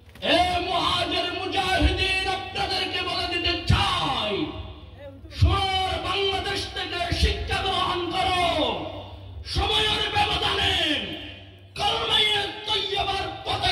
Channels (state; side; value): identical; both; correlation 1.00